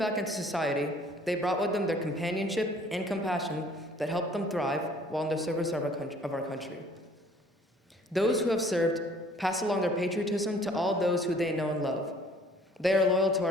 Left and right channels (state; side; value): normal; both; correlation 0.56